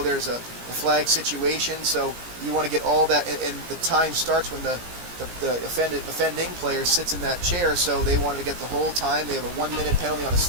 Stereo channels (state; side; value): late; left; 17 ms